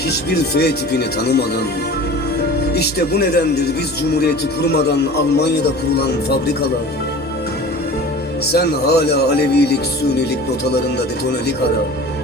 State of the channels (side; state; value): both; normal; correlation 0.39